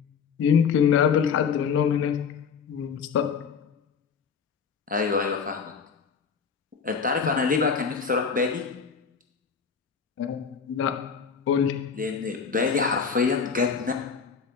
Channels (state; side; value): quieter; right; 6.2 dB